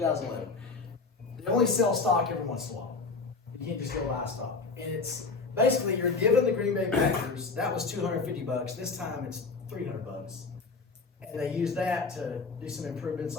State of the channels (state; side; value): quieter; right; 4.2 dB